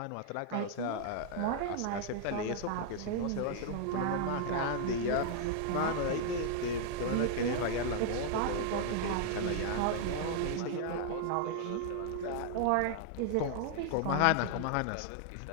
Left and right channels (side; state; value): both; different; correlation -0.01